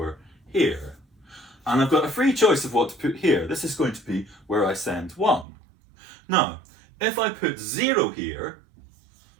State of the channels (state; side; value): drops out; left; at 5.5 s